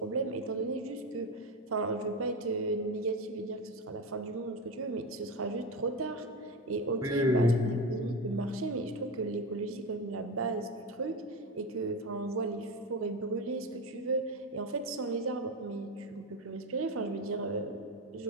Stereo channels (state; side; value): normal; both; correlation 0.19